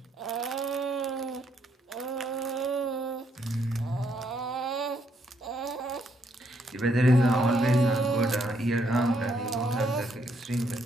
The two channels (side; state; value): both; normal; correlation 0.73